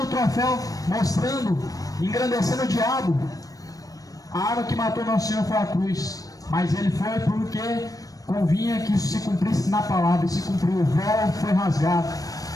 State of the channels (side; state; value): right; late; 0.17 ms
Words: o troféu, mostrando, engrandecendo o diabo. A arma que matou nosso Senhor foi a cruz, mas ele foi porque convinha que isso se cumprisse na palavra, e se cumpriu. O véu foi rasgado,